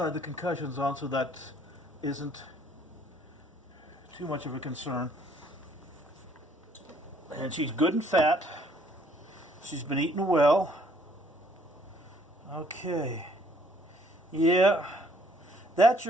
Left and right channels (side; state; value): both; normal; correlation 0.62